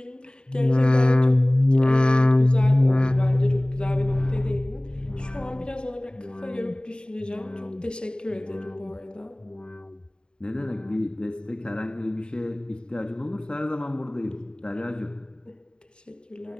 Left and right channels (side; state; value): right; late; 0.049 ms